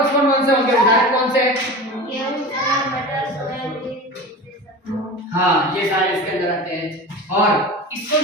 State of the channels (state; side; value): normal; both; correlation 0.32